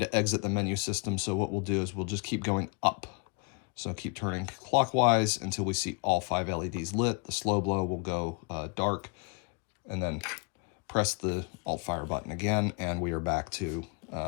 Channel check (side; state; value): right; quieter; 33.9 dB